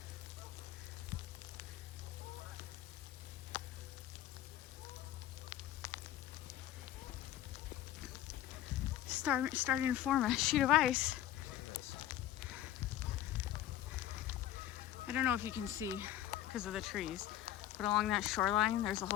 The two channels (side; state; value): right; quieter; 12.7 dB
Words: Starting to form a sheet of ice. I don't know if you can see because of the trees, but along that shoreline, there's a